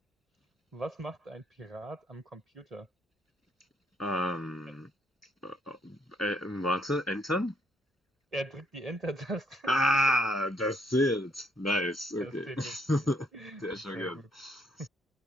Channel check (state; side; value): normal; both; correlation 0.70